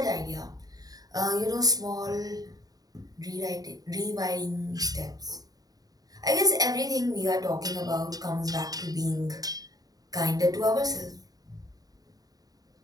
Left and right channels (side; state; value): left; late; 0.18 ms